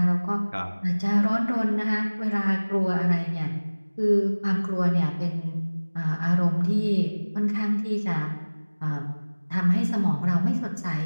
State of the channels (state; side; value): inverted; both; correlation -1.00